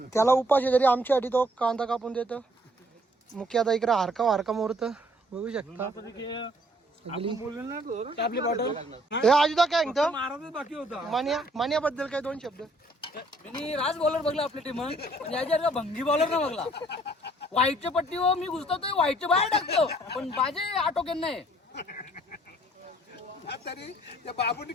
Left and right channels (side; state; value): both; normal; correlation 0.62